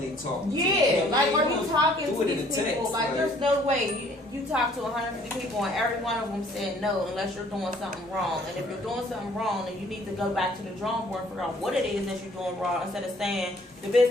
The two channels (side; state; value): both; normal; correlation 0.58